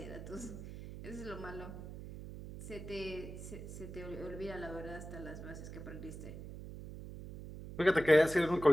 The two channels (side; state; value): right; noise; hum, 10 dB below the sound